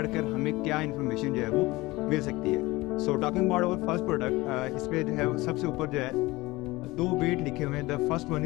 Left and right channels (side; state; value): right; quieter; 20.7 dB